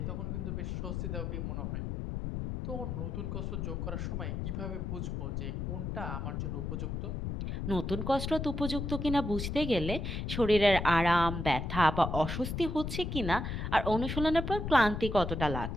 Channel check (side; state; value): left; noise; rumble, 3 dB below the sound